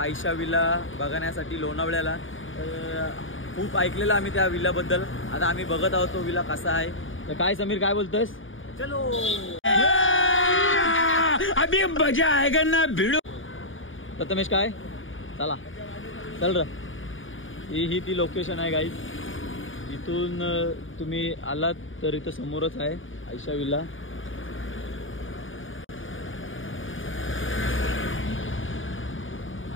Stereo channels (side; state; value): right; late; 0.57 ms